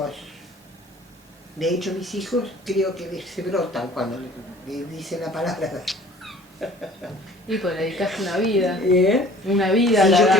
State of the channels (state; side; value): normal; both; correlation 0.50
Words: De hecho, mis hijos creo que se brotan cuando le dicen la palabra. Y pues le dedicaste una vida, ¿Eh? una vida Sí, a la yo